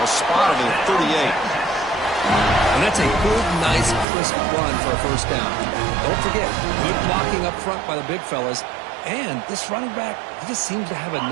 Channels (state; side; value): drops out; left; at 4.0 s